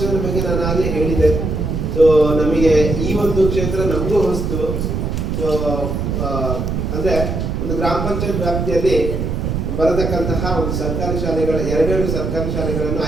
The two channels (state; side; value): noise; right; rumble, 2 dB below the sound